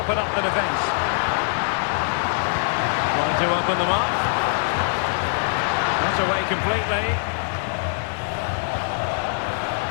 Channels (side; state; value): right; silent; digital silence